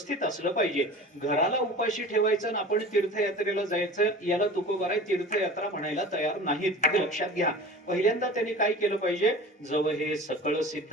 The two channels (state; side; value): normal; both; correlation 0.38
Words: असलं पाहिजे. घराला उपाशी ठेवायचं आणि आपण तीर्थयात्रेला जायचं याला तुकोबाराय तीर्थयात्रा म्हणायला तयार नाहीत, हे लक्षात घ्या. पहिल्यांदा त्यांनी काय केलं पाहिजे? जव हे सकळ सिद्ध